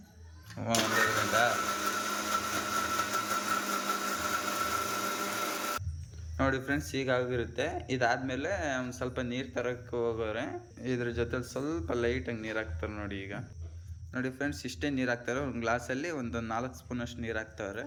ಒಂದೇ ಗಂಟೆ. ನೋಡಿ ಫ್ರೆಂಡ್ಸ್, ಹೀಗಾಗಿರುತ್ತೆ. ಇದಾದಮೇಲೆ ಒಂದು ಸ್ವಲ್ಪ ನೀರು ತರಕ್ಕೆ ಹೋಗೋರೆ ಇದ್ರ ಜೊತೆಲಿ ಸ್ವಲ್ಪ ಲೈಟಾಗಿ ನೀರು ಹಾಕ್ತಾರೆ ನೋಡಿ. ಈಗ ನೋಡಿ ಫ್ರೆಂಡ್ಸ್, ಇಷ್ಟೇ ನೀರು ಹಾಕ್ತಾರೆ. ಒಂದು ಗ್ಲಾಸಲ್ಲಿ ಒಂದು 4 ಸ್ಪೂನಷ್ಟು ನೀರು ಹಾಕ್ತಾರೆ.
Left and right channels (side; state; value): both; identical; correlation 1.00